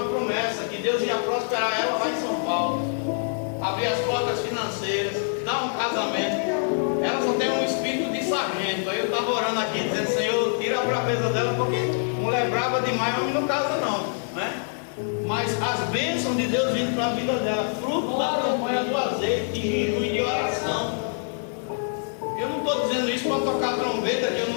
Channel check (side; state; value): right; silent; digital silence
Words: promessa que Deus ia prosperar ela lá em São Paulo, abrir as portas financeiras, dar um casamento. Ela só tem um espírito de sargento. Aí eu estava orando aqui dizendo: Senhor, tira a braveza dela, porque mulher brava demais, homem não casa não, né? Mas as bênçãos de Deus vindo para a vida dela, fruto da campanha do azeite, de jejum e de oração. Eu não estou dizendo isso para tocar trombeta, que eu